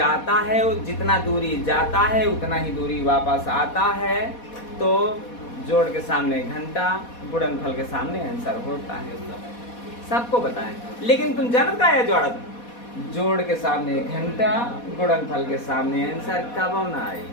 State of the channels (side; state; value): right; late; 4.2 ms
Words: है, जितना दूरी जाता है उतना ही दूरी वापस आता है, तो जोड़ के सामने घंटा, गुणनफल के सामने आंसर होता है। सबको बताएं, लेकिन तुम जानता है जोड़त, जोड़ के सामने घंटा, गुणनफल के सामने आंसर कब ना आई।